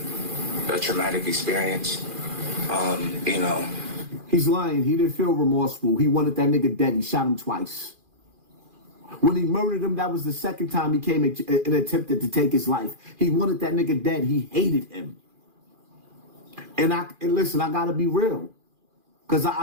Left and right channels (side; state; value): left; late; 2.4 ms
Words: a traumatic experience. He's lying. He didn't feel remorseful. He wanted that nigga dead. He shot him twice. When he murdered him, that was the second time he came and attempted to take his life. He wanted that nigga dead. He hated him. And listen, I gotta be real. Because